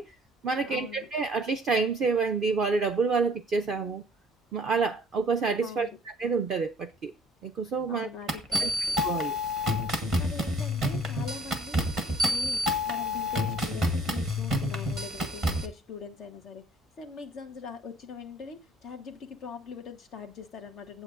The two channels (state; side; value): normal; both; correlation 0.57